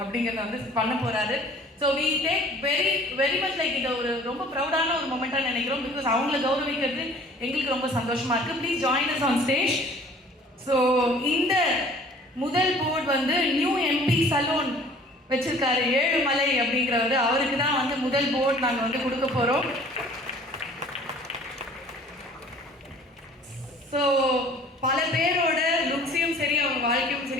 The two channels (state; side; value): normal; both; correlation 0.51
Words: அப்படிங்கிறத வந்து பண்ண போகிறாரு. So we take very much like இதை ஒரு ரொம்ப ப்ரௌடான ஒரு மொமெண்ட்டாக நினைக்கிறோம். பிகாஸ் அவங்கள கௌரவிக்கிறது எங்களுக்கு ரொம்ப சந்தோஷமாக இருக்குது. Please join us on stage. So இந்த முதல் போர்டு வந்து நியூ எம்பி சலூன் வச்சிருக்காரு ஏழுமலை அப்படிங்கிறவர். அவருக்கு தான் வந்து முதல் போர்டு நாங்கள் வந்து கொடுக்க போகிறோம். ஸோ பல பேரோட லுக்ஸையும் சரி அவங்க வாழ்க்கையும்